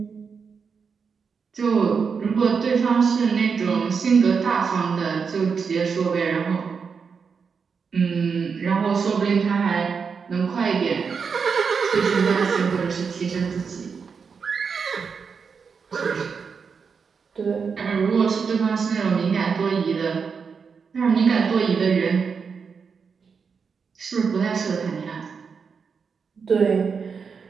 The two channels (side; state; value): left; quieter; 5.8 dB